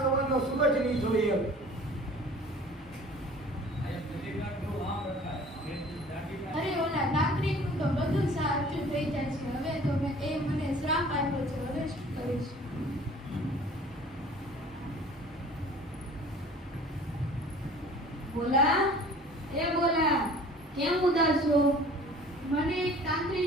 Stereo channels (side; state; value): both; normal; correlation 0.47